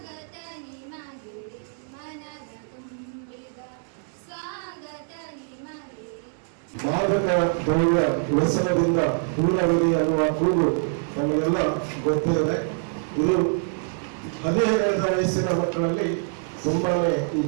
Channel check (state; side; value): silent; left; 62 dB below the other